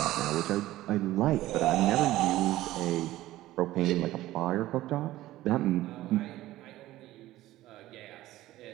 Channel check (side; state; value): left; quieter; 15.8 dB